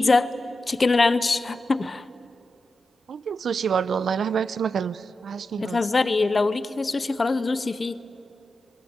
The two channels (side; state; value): both; normal; correlation 0.90